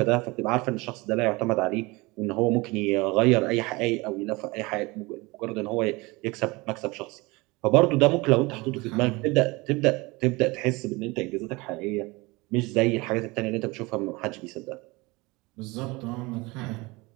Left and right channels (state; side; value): quieter; left; 23.9 dB